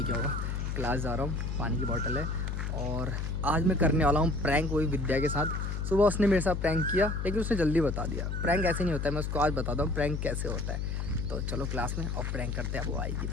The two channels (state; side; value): noise; left; hum, 2 dB below the sound